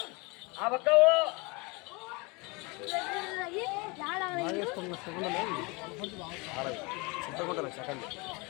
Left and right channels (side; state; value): right; quieter; 27.7 dB